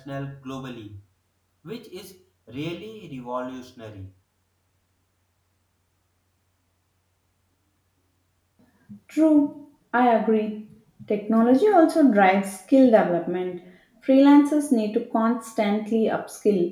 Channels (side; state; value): both; identical; correlation 1.00